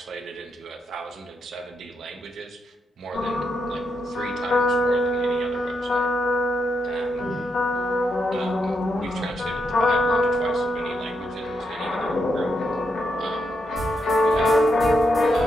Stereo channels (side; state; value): both; normal; correlation 0.81